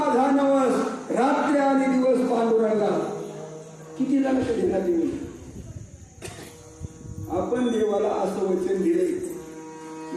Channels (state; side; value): identical; both; correlation 1.00